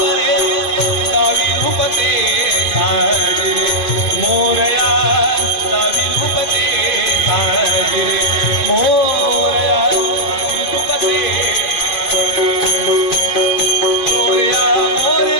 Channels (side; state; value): right; late; 2.5 ms